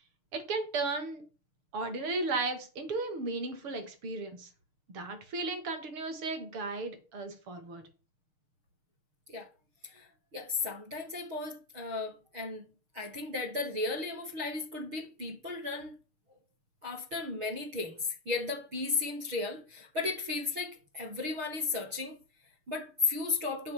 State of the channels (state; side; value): late; left; 6.5 ms